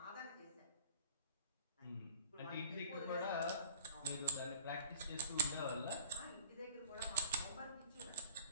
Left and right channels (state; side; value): inverted; both; correlation -0.45